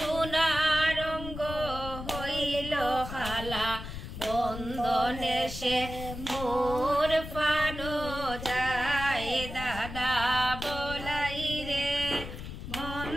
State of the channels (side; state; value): left; noise; rumble, 9 dB below the sound